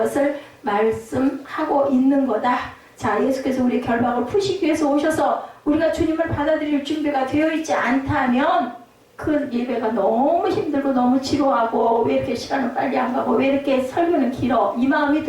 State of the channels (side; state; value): both; identical; correlation 1.00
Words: 말씀하고 있는 거다. 자, 예수께서 우리 결박을 푸시기 위해서 오셔서 우리가 주님을 받아들일 준비가 되어 있지 않다면 그 예배가 너무 힘들고 너무 지루하고 왜 이렇게 시간은 빨리 안 가고 왜 이렇게 설교는 길어 이 마음이